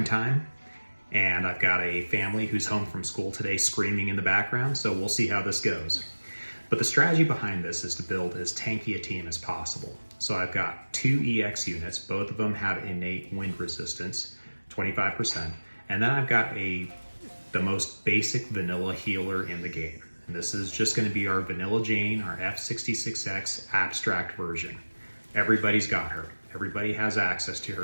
and I've got a family who's home from school today screaming in the background, so we'll see how this goes. But the strategy behind this is to build as tanky a team as possible. So I've got 2 EX units, both of them have innate wind resistance, 25%, and then I've got the most basic vanilla healer in the game. And this is just going to be our Vanilla Jane, our F66X abstract version. Everybody's got her. Everybody has access to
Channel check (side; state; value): both; inverted; correlation -1.00